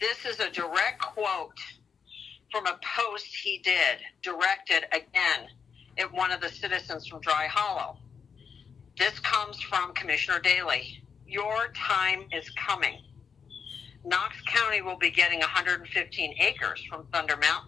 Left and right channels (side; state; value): right; quieter; 6.3 dB